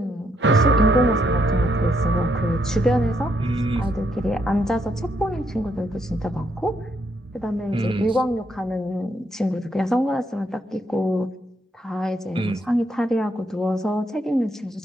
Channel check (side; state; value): both; normal; correlation 0.75